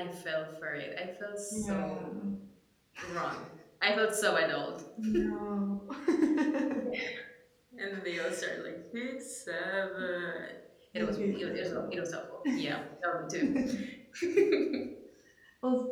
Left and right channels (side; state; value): both; identical; correlation 1.00